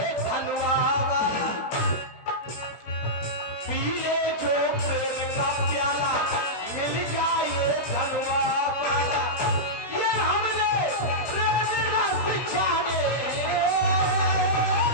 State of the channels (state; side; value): late; right; 16 ms